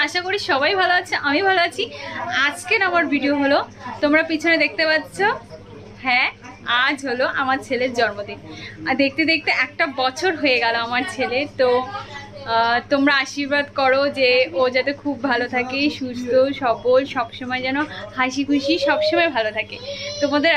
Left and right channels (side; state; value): both; identical; correlation 1.00